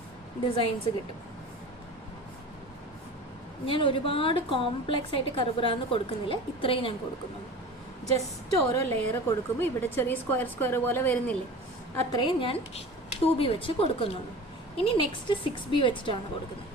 ഡിസൈൻസ് കിട്ടും. ഞാൻ ഒരുപാട് കോംപ്ലക്സ് ആയിട്ട് കറുപുറാന്ന് കൊടുക്കുന്നില്ല, ഇത്രയും ഞാൻ കൊടുക്കുന്നുള്ളൂ. ജസ്റ്റ് ഓരോ ലെയർ കൊടുക്കുമ്പോൾ ഇവിടെ ചെറിയ സ്ക്വയർ പോലെ വരുന്നില്ലേ, അത്രയും ഞാൻ 2B വെച്ച് കൊടുക്കുന്നുള്ളൂ. ഇനി നെക്സ്റ്റ് 6B വെച്ചിട്ടാണ് കൊടുക്കുന്നത്.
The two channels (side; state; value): both; normal; correlation 0.36